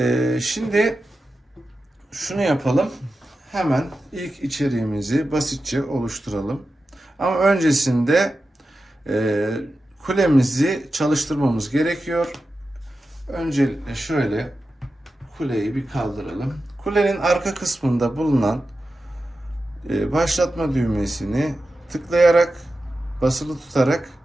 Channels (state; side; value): normal; both; correlation 0.92